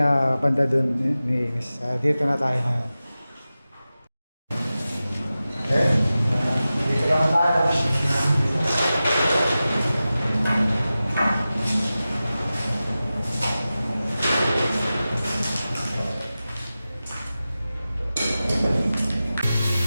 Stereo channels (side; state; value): both; inverted; correlation -0.95